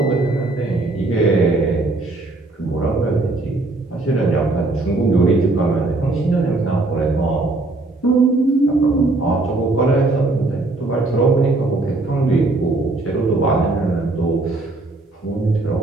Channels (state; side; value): quieter; left; 3.1 dB